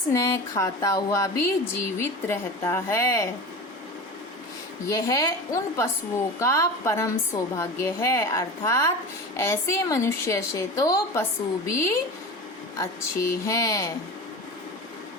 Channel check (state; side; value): normal; both; correlation 0.30